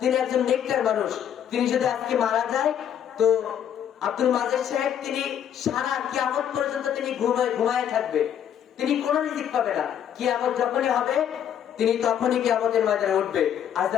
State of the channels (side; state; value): right; quieter; 9.5 dB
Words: একজন নেককার মানুষ, তিনি যদি আজকে মারা যায় তো আব্দুল মাজেদ সাহেব তিনি সারা কিয়ামত পর্যন্ত তিনি ঘুমায় থাকবে, তিনি কোনো রিজিক পাবে না। কিয়ামত যখনই হবে তিনি তখনই কিয়ামতের ময়দানে উঠবে। আর